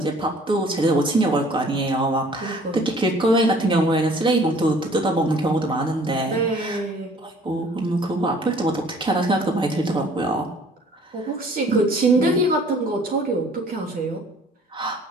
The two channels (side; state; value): both; normal; correlation 0.54